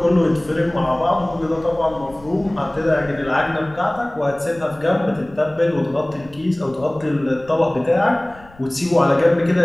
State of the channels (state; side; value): noise; left; rumble, 23 dB below the sound